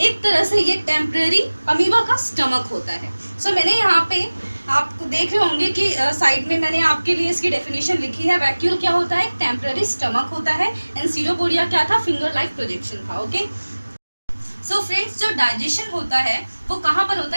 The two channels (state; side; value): inverted; both; correlation -1.00